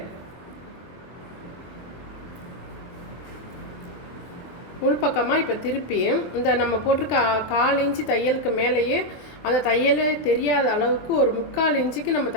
உள்பக்கமாக இப்போ திருப்பி இந்த நம்ம போட்டிருக்க 1/4 இன்ச்சு தையலுக்கு மேலேயே அந்த தையலே தெரியாத அளவுக்கு ஒரு 3/4 இன்ச்சுக்கு நம்ம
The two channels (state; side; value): late; right; 24 ms